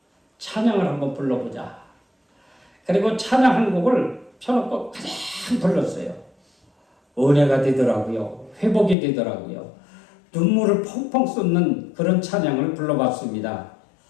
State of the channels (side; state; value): right; drops out; at 9.0 s